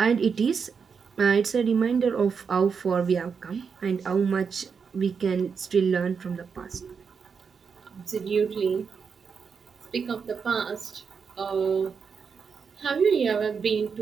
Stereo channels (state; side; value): quieter; left; 6.0 dB